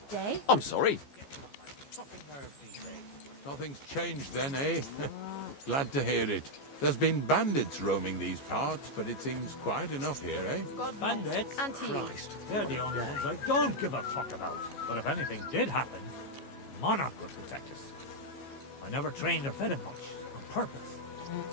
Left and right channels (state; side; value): late; right; 14 ms